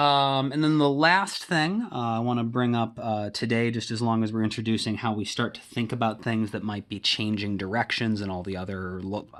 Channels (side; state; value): both; identical; correlation 1.00